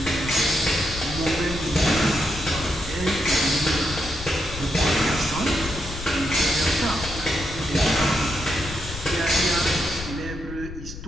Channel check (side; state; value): left; noise; rumble, 11 dB below the sound